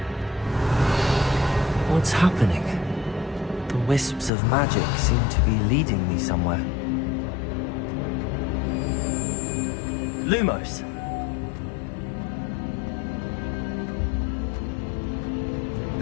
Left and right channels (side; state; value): right; drops out; at 4.3 s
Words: What's happening? The wisps of magic seem to be leading me somewhere. Lumos.